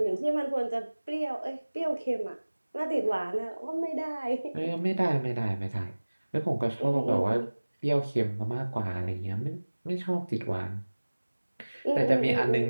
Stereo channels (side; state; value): both; inverted; correlation -1.00